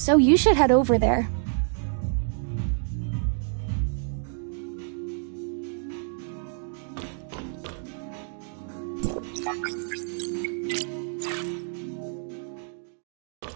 you should head over there.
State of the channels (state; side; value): silent; left; 59 dB below the other